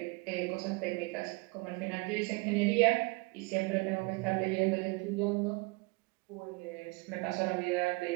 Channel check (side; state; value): left; quieter; 27.0 dB